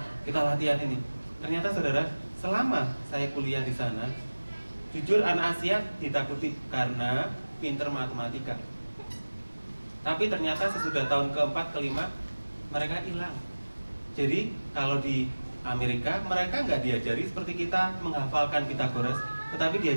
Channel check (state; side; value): inverted; both; correlation -1.00